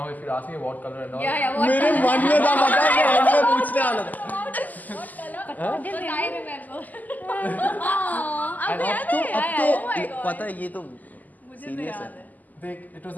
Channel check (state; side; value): late; right; 0.081 ms